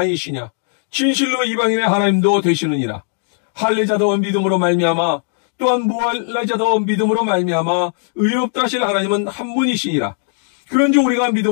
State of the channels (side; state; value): right; silent; digital silence